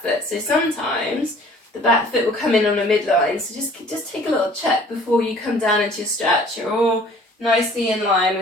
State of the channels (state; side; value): normal; both; correlation 0.53